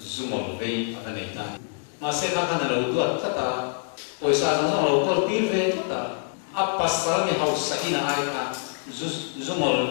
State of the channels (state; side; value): silent; right; 61 dB below the other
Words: zoom về anh này ta mà sẽ là cái nào tuột tất cả poisa nó nó có tiền về tất cả áp pasal này học sai na ai ta